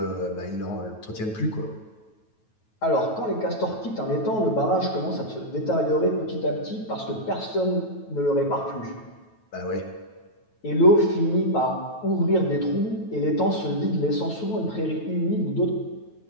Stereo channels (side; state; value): right; late; 9.3 ms